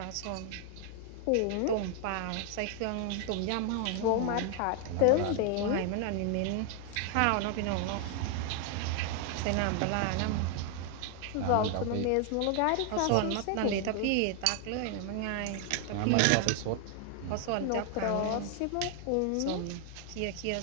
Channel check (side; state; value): both; different; correlation 0.00